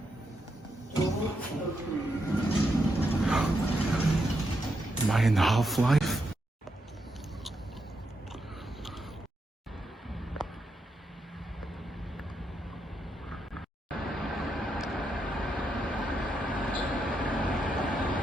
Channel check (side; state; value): both; normal; correlation 0.82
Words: Am I in Half-Life?